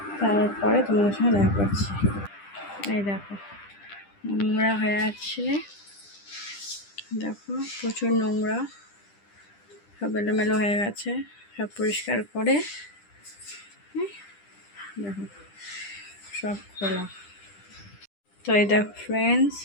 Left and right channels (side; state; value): right; late; 10 ms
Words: তারপরে তোমাদের সঙ্গে দেখা করছি। এই দেখো নোংরা হয়ে আছে, দেখো প্রচুর নোংরা, সব এলোমেলো হয়ে গেছে। সব পরিষ্কার করে দেখো সব খোলা। তো এই দেখো ফ্রেন্ডস,